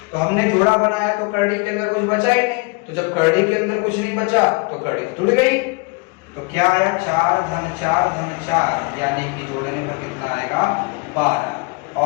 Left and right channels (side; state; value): right; quieter; 29.4 dB